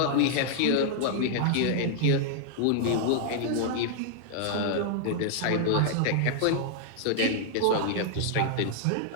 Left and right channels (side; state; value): both; different; correlation -0.01